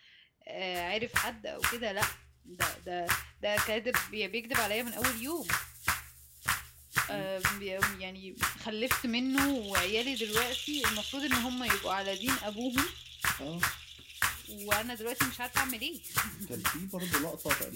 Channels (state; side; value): identical; both; correlation 1.00